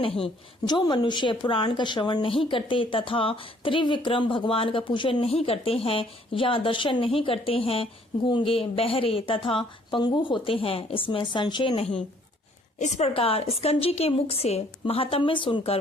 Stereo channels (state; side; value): normal; both; correlation 0.61